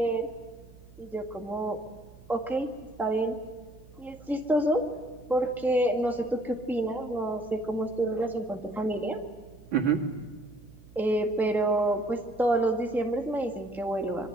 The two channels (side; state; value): right; noise; hum, 22 dB below the sound